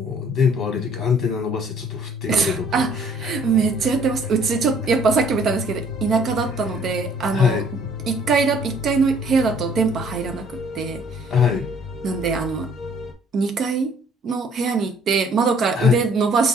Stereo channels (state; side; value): normal; both; correlation 0.59